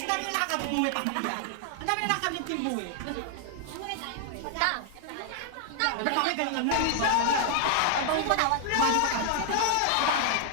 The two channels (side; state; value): both; different; correlation 0.00